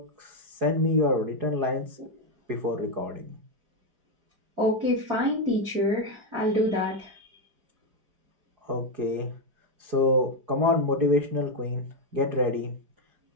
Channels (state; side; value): late; left; 4.7 ms